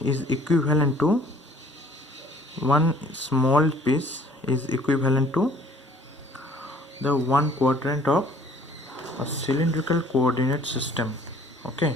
equivalent to, one small piece is equivalent to the 1 quadrant of a cylindrical coordinate system. Okay,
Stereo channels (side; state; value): both; normal; correlation 0.56